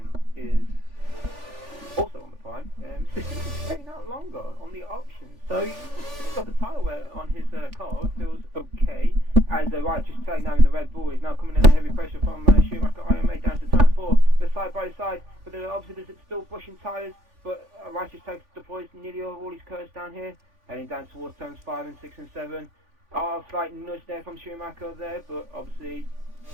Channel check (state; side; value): late; left; 3.4 ms